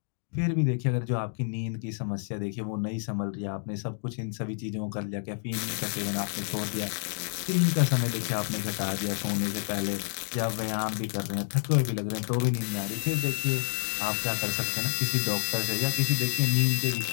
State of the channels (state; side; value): silent; right; 59 dB below the other